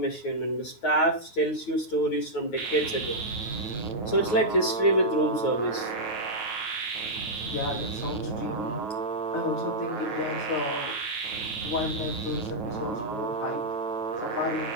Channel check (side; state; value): right; late; 9.3 ms